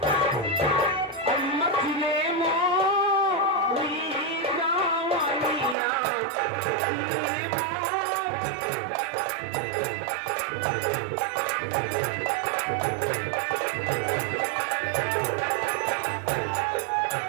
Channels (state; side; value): drops out; left; at 5.8 s